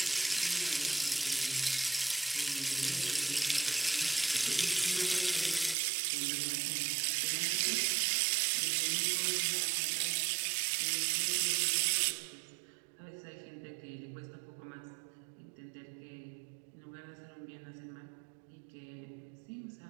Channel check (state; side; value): drops out; left; at 5.8 s